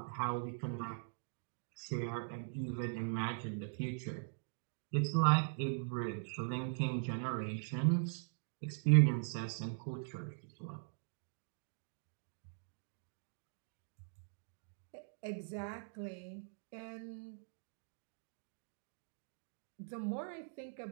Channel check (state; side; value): silent; left; digital silence